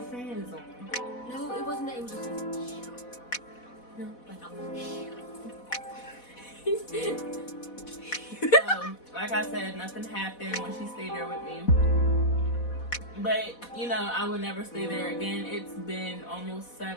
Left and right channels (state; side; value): late; right; 4.1 ms